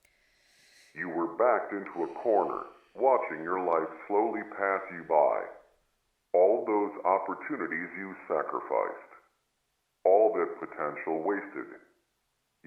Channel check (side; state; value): both; identical; correlation 1.00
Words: You were backed into a corner, watching your life slowly pass you by. All those opportunities you sacrificed. All that potential wasted.